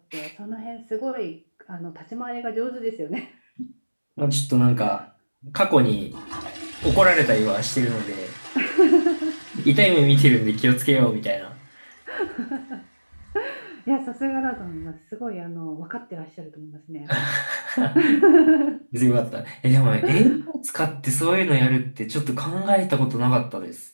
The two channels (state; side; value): inverted; both; correlation -1.00